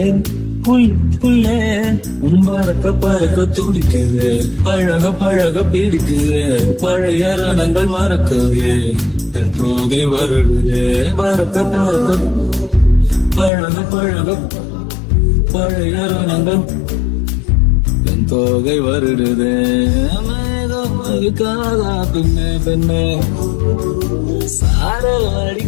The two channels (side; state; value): right; drops out; at 13.5 s